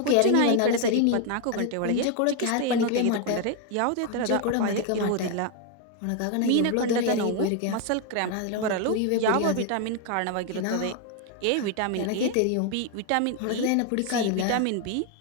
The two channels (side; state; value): both; different; correlation 0.01